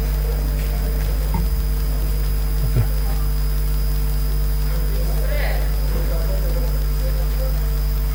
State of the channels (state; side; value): identical; both; correlation 1.00